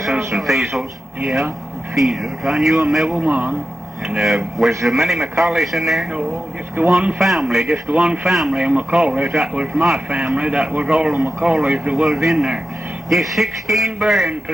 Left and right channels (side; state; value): both; normal; correlation 0.92